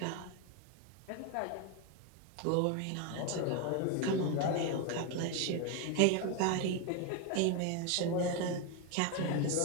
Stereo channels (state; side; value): different; both; correlation 0.02